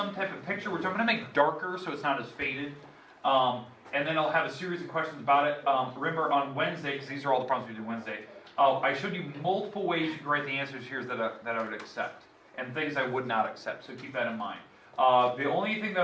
type of picture, which I'm going to make darker so it's not as faded. And then I'll have a series of questions about it. Remember, on Wednesday, because these are all the problems we did Wednesday, I showed you multiple ways you can write the answers here that I would accept, and things I would not accept, so keep that in mind. The only thing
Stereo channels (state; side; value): identical; both; correlation 1.00